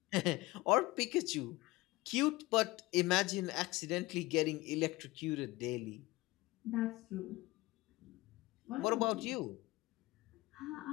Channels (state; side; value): quieter; right; 20.6 dB